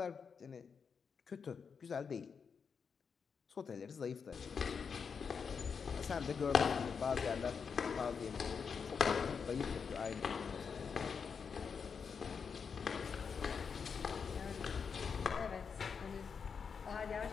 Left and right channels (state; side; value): quieter; right; 6.1 dB